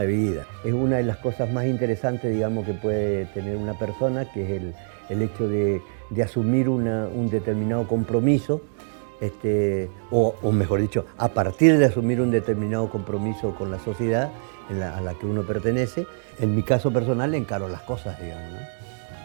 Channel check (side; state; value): left; silent; digital silence